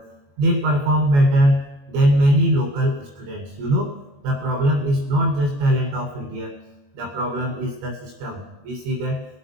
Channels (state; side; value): late; left; 21 ms